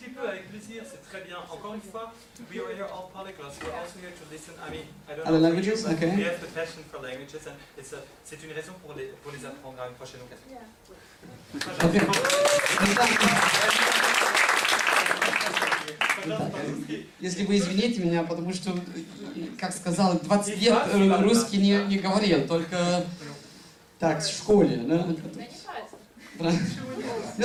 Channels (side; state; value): both; identical; correlation 1.00